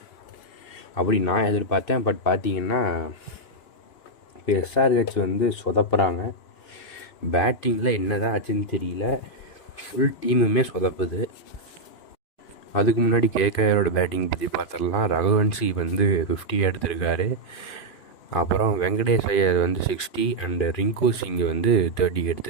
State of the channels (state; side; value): late; right; 2.4 ms